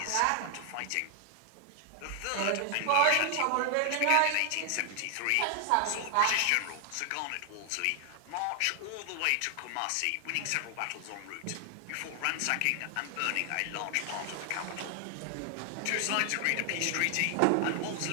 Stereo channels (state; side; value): different; both; correlation 0.00